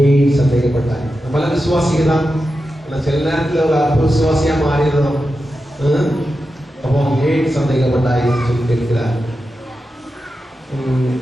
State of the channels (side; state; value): both; normal; correlation 0.90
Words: சந்தேகப்பட்டார்? நம்மள விசுவாசிங்க தான், சில நேரத்தில் ஒரு அற்ப விசுவாசியா மாறிடுறோம். அப்போ ஏன் சந்தேகப்பட்டாய் என்று சொல்லி கேட்கிறார்.